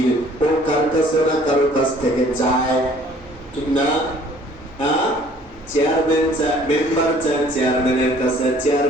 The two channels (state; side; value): normal; both; correlation 0.56